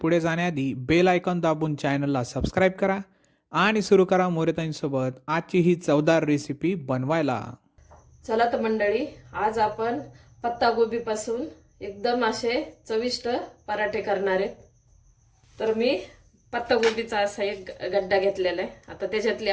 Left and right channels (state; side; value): identical; both; correlation 1.00